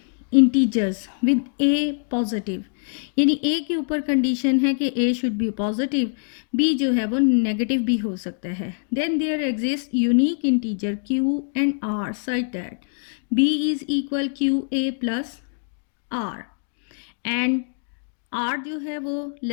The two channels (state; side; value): silent; right; digital silence